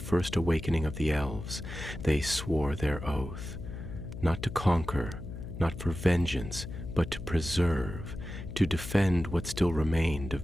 awakening of the elves, they swore their oath, not to conquer, not for vengeance, but to preserve, to defend what still remained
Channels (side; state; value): left; noise; hum, 9 dB below the sound